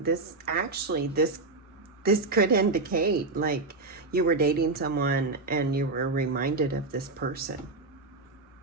This could indicate like you were dating someone and you were reminded of this person.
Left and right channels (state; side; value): quieter; left; 3.5 dB